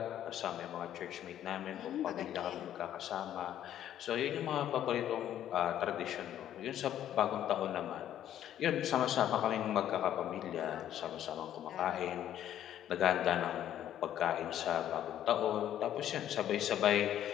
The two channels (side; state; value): right; quieter; 11.2 dB